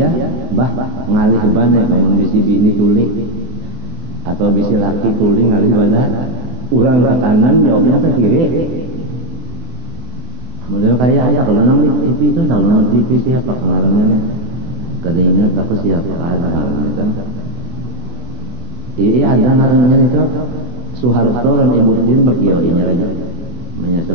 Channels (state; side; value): late; left; 24 ms